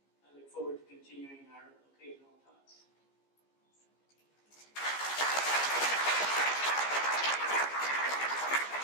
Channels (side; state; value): right; late; 15 ms